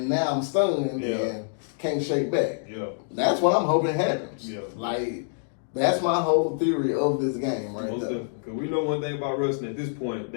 now I'm stunned and can't shake back. Yeah, that's what I'm hoping happens. Yeah, like. That's my whole theory of this game right there. Because we know one thing about Ruston at this point.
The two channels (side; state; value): right; silent; digital silence